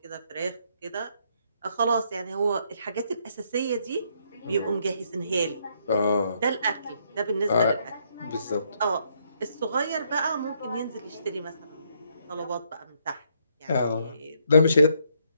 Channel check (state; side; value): inverted; both; correlation -0.72